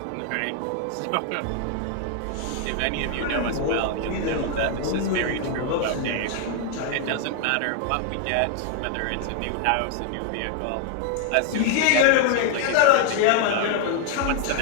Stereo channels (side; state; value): both; different; correlation 0.00